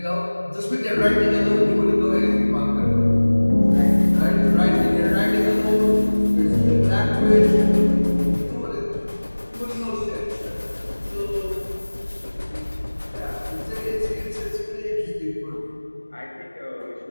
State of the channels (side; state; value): both; inverted; correlation -1.00